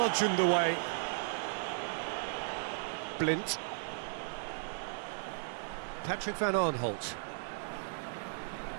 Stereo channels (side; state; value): left; silent; digital silence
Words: away. Blint. Patrick van Aanholt.